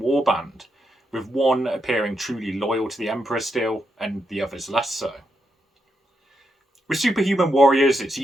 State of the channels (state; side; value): normal; both; correlation 0.82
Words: with one appearing truly loyal to the Emperor still, and the others less so. With superhuman warriors, it's